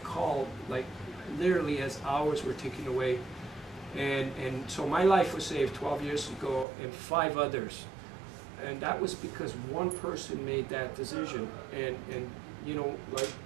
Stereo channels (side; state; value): left; drops out; at 6.7 s